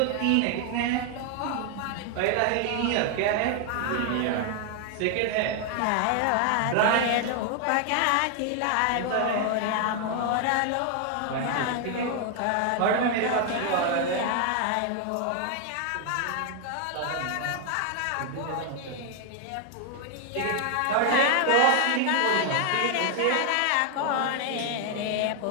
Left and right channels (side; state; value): both; different; correlation 0.00